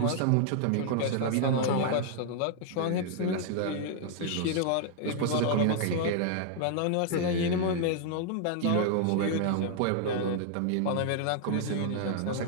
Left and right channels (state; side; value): different; both; correlation 0.00